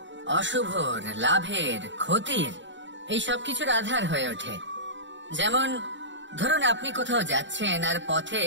অশুভর, লাভের, ক্ষতির, এই সব কিছুর আধার হয়ে ওঠে। যেমন ধরুন, আপনি কোথাও যাচ্ছেন আর পথে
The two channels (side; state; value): left; late; 0.54 ms